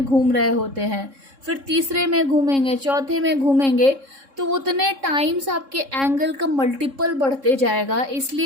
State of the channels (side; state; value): left; late; 3.7 ms